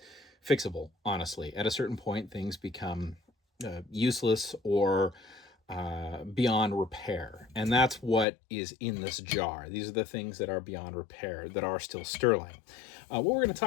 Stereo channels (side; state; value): right; drops out; at 8.2 s